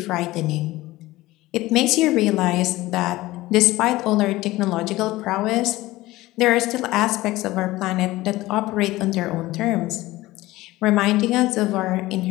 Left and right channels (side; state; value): right; quieter; 18.2 dB